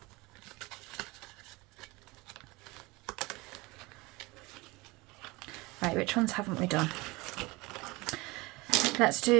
Right, which ones haven't we done? Let's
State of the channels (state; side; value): quieter; left; 23.3 dB